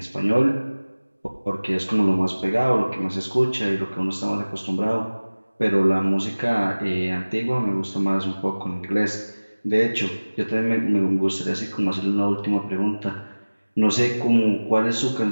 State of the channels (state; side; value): inverted; both; correlation -1.00